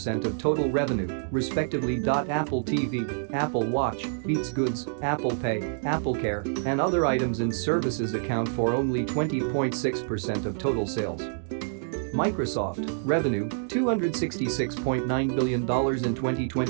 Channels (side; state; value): left; silent; digital silence